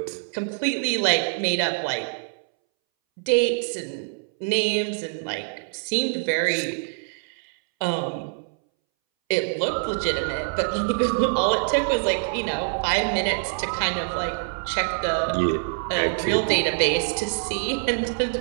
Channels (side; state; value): left; silent; 62 dB below the other